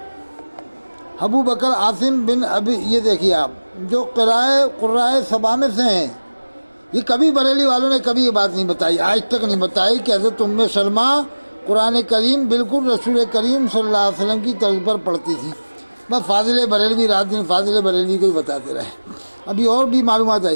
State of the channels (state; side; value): inverted; both; correlation -1.00